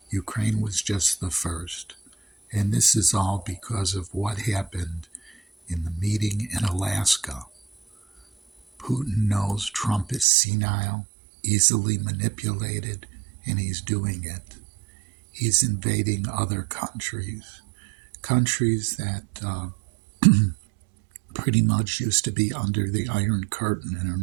Ukraine was just the first. And this is all because of what happened in the meeting in Alaska. Putin knows Trump is senile, easily manipulated, and he's doing it. He's invading other countries that pretty much used to be under the Iron Curtain and are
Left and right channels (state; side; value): drops out; left; at 10.2 s